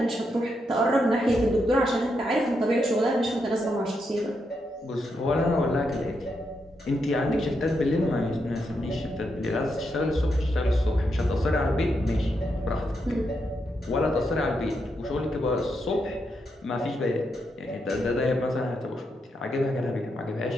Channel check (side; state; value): both; normal; correlation 0.82